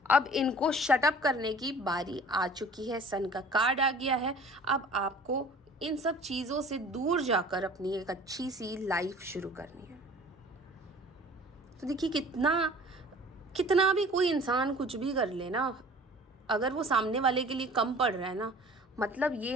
अब इनको शट अप करने की बारी आ चुकी है, सन का कार्ड आ गया है। अब आपको इन सब चीज़ों से दूर जाकर अपनी एक अच्छी सी लाइफ शुरू करनी है। तो देखिए कितना भी कोई इंसान कुछ भी कर ले ना, अगर वो सामने वाले के लिए कम पड़ रहा है ना, मतलब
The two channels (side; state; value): both; normal; correlation 0.47